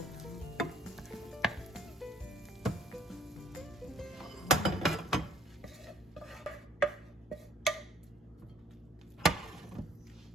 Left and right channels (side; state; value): both; normal; correlation 0.57